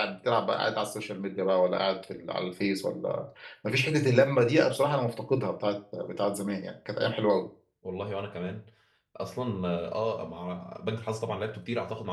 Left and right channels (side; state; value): both; identical; correlation 1.00